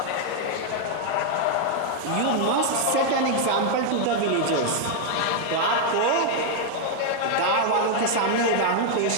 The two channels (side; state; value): both; different; correlation 0.00